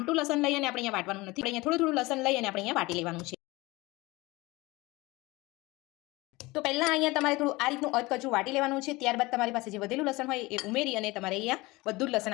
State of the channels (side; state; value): right; quieter; 21.8 dB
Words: લસણ લઈ અને આપણે અહીંયા વાટવાનું નથી, અહીંયા થોડું થોડું લસણ લઈ અને આપણે અહીંયા વાટી લેવાનું છે। તો પહેલા અહીંયા તમારે થોડું આ રીતનું અધકચરું વાટી લેવાનું છે। ત્યારબાદ તમારી પાસે જે વધેલું લસણ હોય એ ઉમેરી અને તમારે અહીંયા બધું જ લસણ